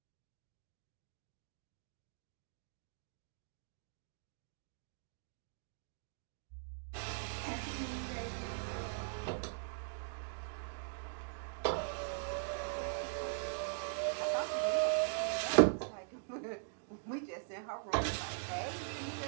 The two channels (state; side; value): silent; left; digital silence